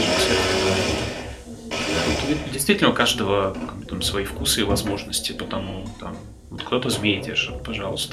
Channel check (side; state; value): both; identical; correlation 1.00